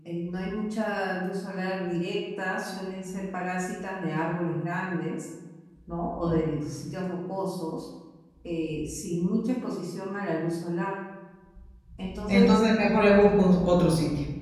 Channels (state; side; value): identical; both; correlation 1.00